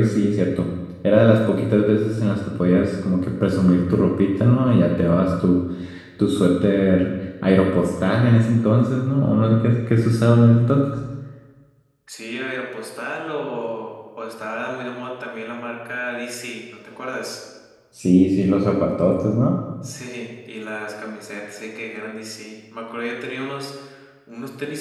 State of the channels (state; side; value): identical; both; correlation 1.00